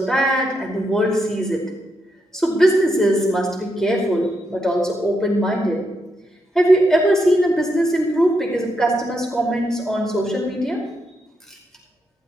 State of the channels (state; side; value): normal; both; correlation 0.81